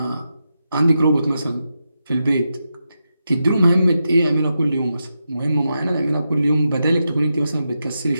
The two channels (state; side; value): inverted; both; correlation -0.87